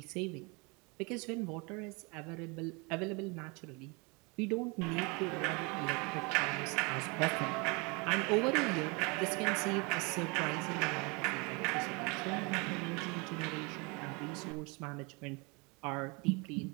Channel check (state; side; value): quieter; left; 29.3 dB